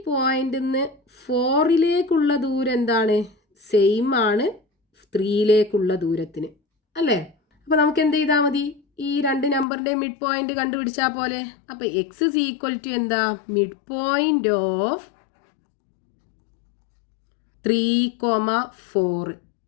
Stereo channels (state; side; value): drops out; right; at 9.7 s